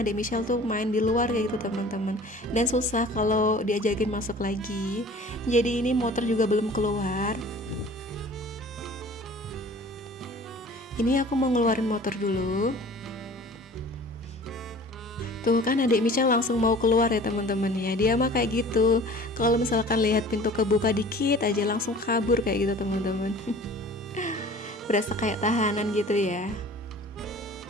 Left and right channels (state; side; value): normal; both; correlation 0.45